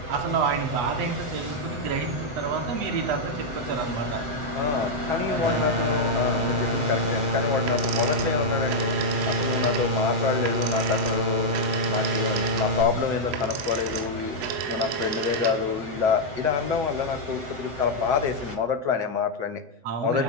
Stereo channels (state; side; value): late; left; 7.7 ms